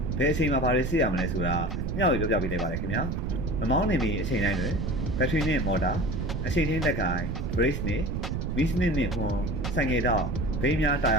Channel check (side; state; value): right; noise; rumble, 2 dB below the sound